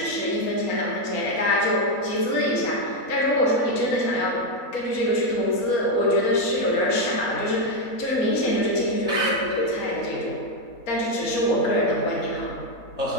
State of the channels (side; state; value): right; late; 4.2 ms